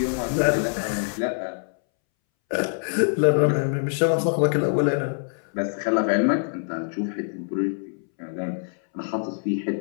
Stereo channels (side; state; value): right; silent; 62 dB below the other